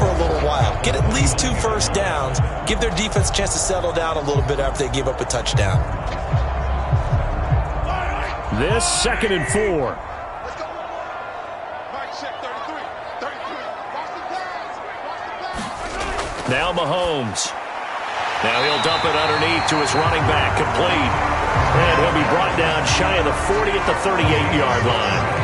a little while. Get at least 2 first downs. Give their defense a chance to settle down a little bit after they give up a touchdown. This 2nd and 4. Now Mahomes. Now he'll dump it underneath to his running back, complete. And he'll be brought down shy of the 40 at the 38-yard line.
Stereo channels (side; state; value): both; identical; correlation 1.00